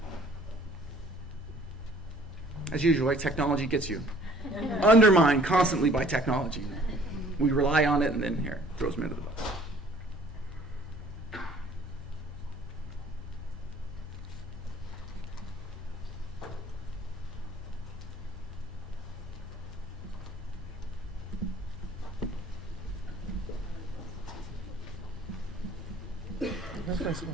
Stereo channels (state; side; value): normal; both; correlation 0.55